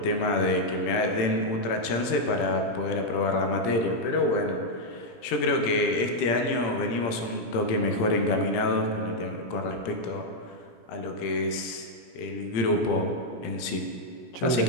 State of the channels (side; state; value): right; late; 17 ms